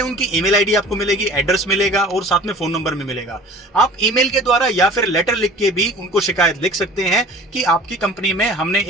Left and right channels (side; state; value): both; normal; correlation 0.44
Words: उनकी ईमेल आईडी आपको मिलेगी, एड्रेस मिलेगा और साथ में फोन नंबर भी मिलेगा। आप ईमेल के द्वारा या फिर लेटर लिख के भी उनको शिकायत लिख सकते हैं कि आपकी कंपनी में हमने